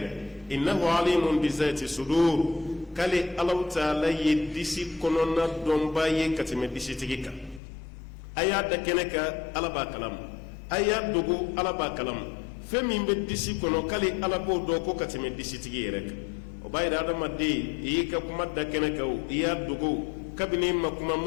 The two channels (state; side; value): drops out; right; at 7.6 s